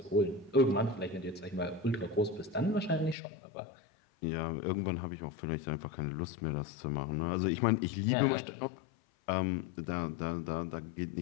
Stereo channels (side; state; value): right; drops out; at 3.2 s